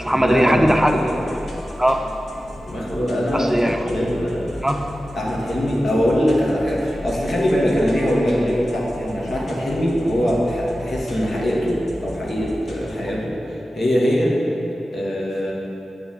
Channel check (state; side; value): normal; both; correlation 0.94